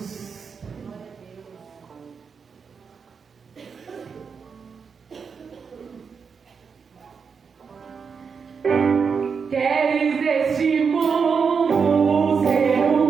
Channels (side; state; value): left; quieter; 5.9 dB